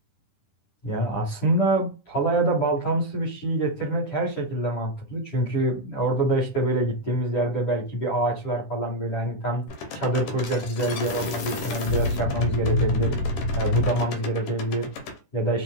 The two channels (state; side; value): late; right; 10 ms